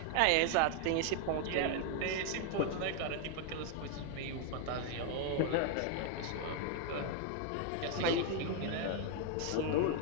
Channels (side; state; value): both; different; correlation 0.01